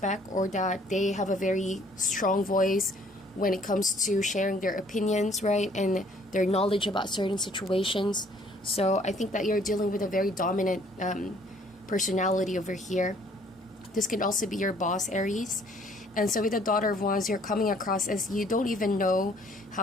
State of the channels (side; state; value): both; normal; correlation 0.60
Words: or that they have a very strong voice when it comes to sharing their opinions, right? And their knowledge about certain situations. So I think that you're dealing with a very dominant personality over here. This could also be your boss, Aries. And so with the Daughter of Wands, you're coming across as you don't even know